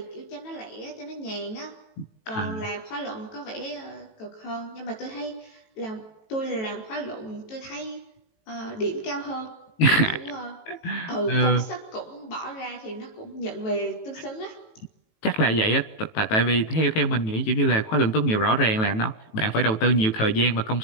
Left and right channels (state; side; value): late; right; 18 ms